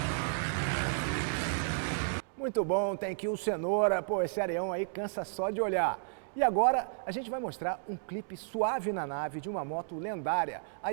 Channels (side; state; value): left; silent; digital silence